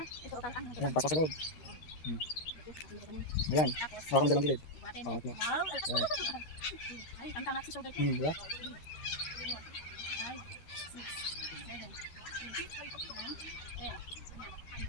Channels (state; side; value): late; right; 13 ms